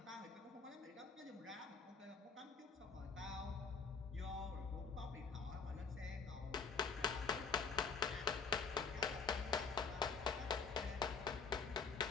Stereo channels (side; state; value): right; quieter; 5.1 dB